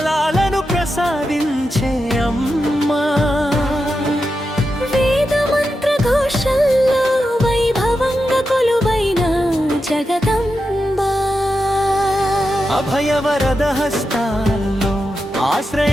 ప్రసాదించే అమ్మా, వేద మంత్ర ఘోషల్లో వైభవంగా కొలువైన జగదంబ, అభయవరద హస్తాల్లో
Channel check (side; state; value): both; normal; correlation 0.89